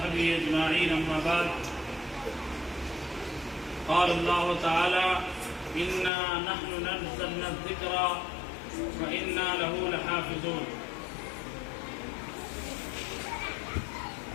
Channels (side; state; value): right; drops out; at 6.1 s